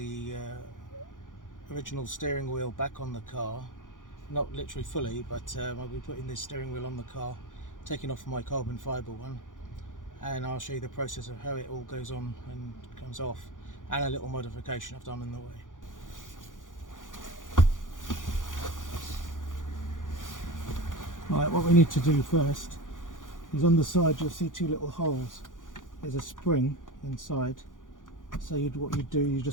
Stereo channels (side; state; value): right; late; 0.88 ms